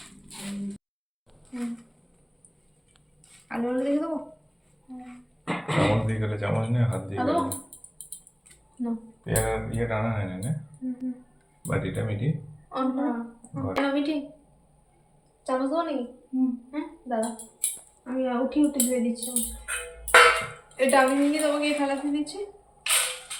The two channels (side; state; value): both; identical; correlation 1.00